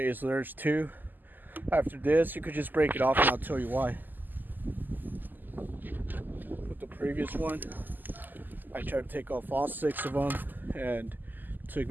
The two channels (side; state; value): left; late; 0.088 ms